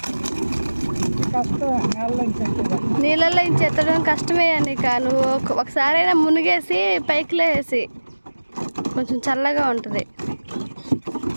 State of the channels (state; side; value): inverted; both; correlation -1.00